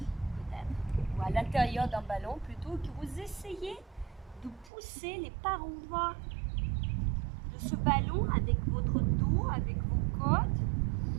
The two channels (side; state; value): left; drops out; at 4.7 s